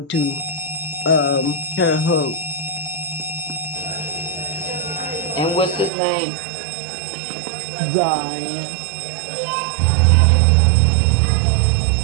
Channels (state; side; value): drops out; left; at 5.9 s